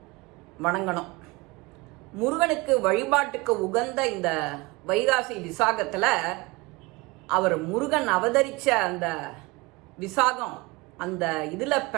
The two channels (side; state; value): left; quieter; 24.2 dB